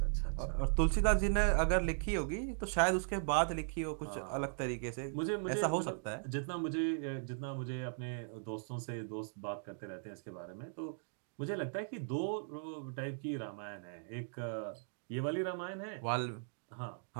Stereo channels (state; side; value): silent; left; digital silence